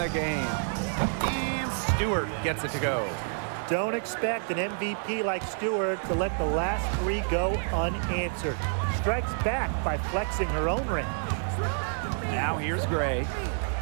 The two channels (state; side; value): silent; left; 59 dB below the other